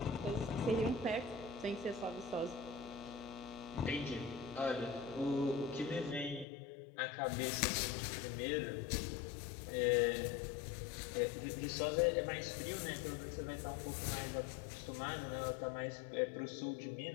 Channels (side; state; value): right; drops out; at 6.5 s